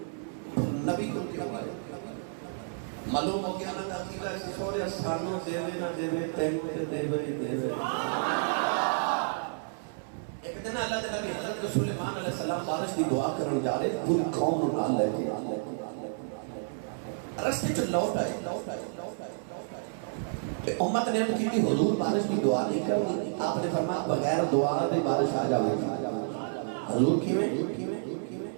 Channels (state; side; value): silent; left; 58 dB below the other